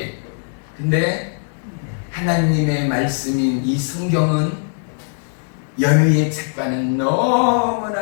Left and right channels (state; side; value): silent; right; digital silence